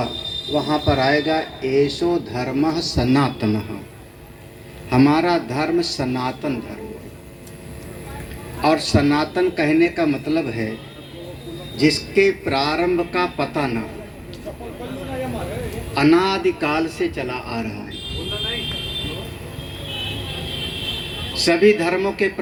वहाँ पर आएगा एसो धर्मः सनातनः। हमारा धर्म सनातन धर्म है। और सनातन कहने का मतलब है जिसके प्रारंभ का पता न हो, अनादिकाल से चला आ रहा है। सभी धर्मों के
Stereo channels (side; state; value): both; identical; correlation 1.00